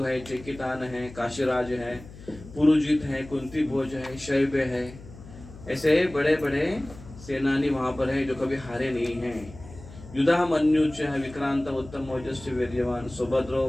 है, चेकितान है, काशीराज है, पुरुजित है, कुंती भोज है, शैब्य है। ऐसे बड़े बड़े सेनानी वहां पर है जो कभी हारे नहीं हैं। युधा मन्युच विक्रांत उत्तम ओजस्य वीर्यवान सुभद्रो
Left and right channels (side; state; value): left; noise; hum, 17 dB below the sound